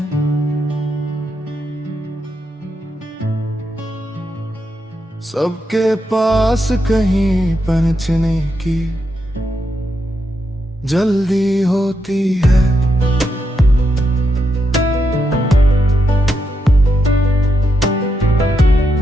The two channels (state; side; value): normal; both; correlation 0.83